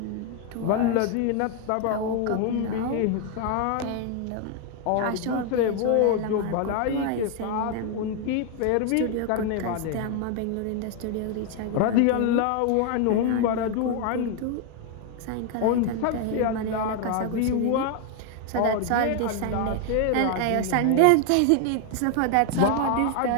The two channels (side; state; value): both; different; correlation 0.00